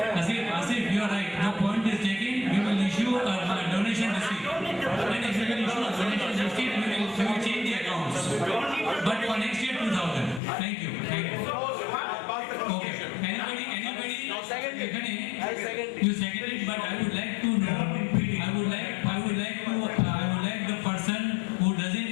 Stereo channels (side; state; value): right; drops out; at 10.4 s